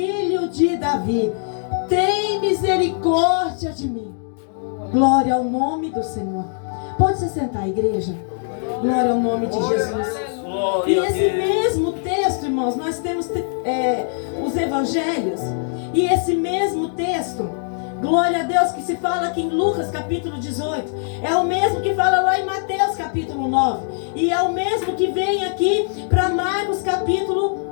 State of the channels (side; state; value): right; silent; digital silence